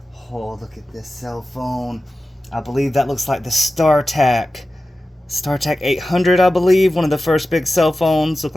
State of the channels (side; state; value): both; normal; correlation 0.94